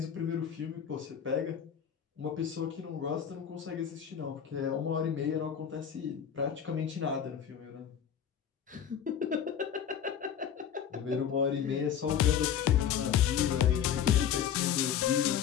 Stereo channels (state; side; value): quieter; right; 8.5 dB